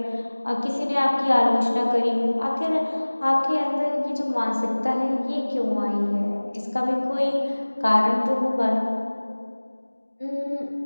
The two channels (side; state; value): both; inverted; correlation -1.00